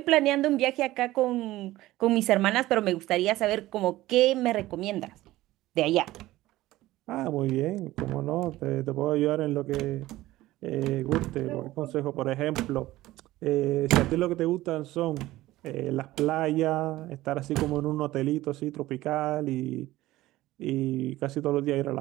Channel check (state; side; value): quieter; left; 16.7 dB